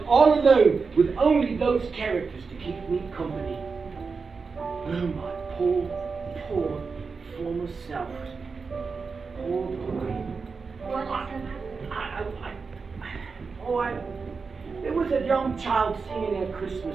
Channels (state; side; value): quieter; left; 4.9 dB